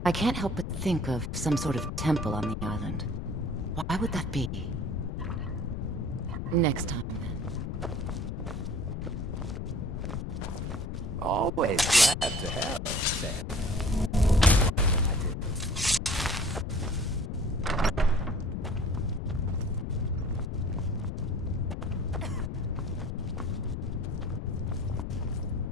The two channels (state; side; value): noise; left; rumble, 4 dB below the sound